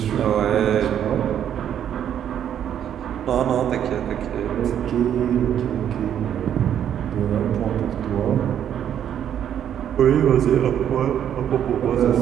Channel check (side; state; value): left; quieter; 9.7 dB